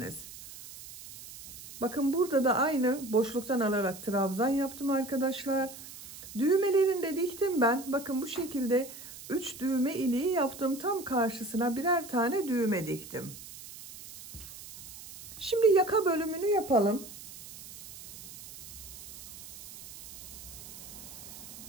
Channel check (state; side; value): noise; right; hiss, 15 dB below the sound